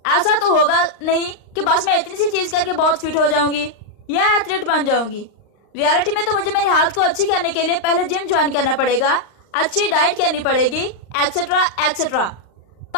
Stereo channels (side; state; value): right; late; 39 ms